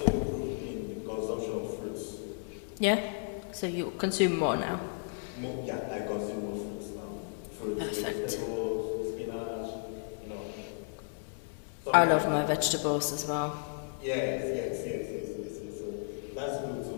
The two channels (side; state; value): right; silent; 55 dB below the other